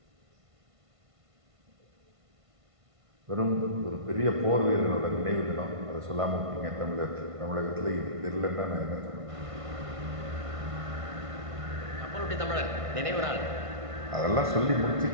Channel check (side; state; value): left; late; 1.5 ms